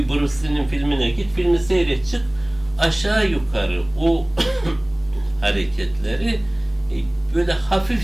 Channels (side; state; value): right; noise; rumble, 25 dB below the sound